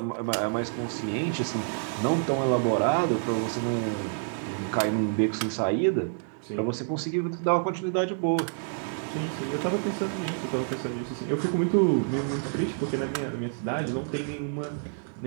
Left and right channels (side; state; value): left; silent; 58 dB below the other